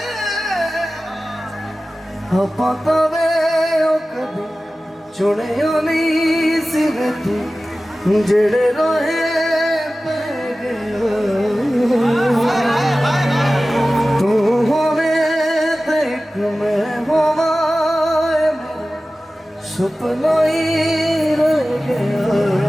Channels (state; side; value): normal; both; correlation 0.96